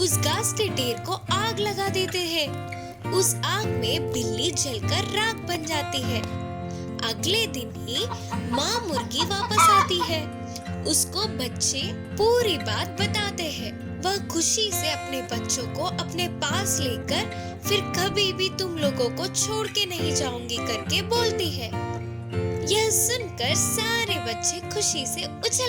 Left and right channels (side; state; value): both; identical; correlation 1.00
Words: घास के ढेर को आग लगा देते हैं। उस आग में बिल्ली जलकर राख बन जाती है। अगले दिन ही माँ मुर्गी वापस आती है। उसको बच्चे पूरी बात बताते हैं। वह खुशी से अपने बच्चों को अपने पास लेकर फिर कभी भी तुम लोगों को छोड़ के नहीं जाऊंगी करके बोलती है। यह सुनकर सारे बच्चे खुशी से